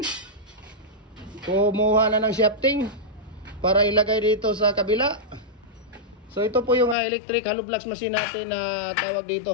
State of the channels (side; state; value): right; drops out; at 7.0 s